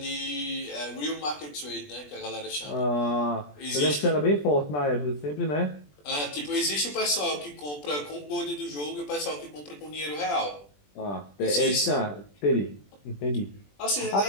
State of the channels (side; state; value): right; late; 20 ms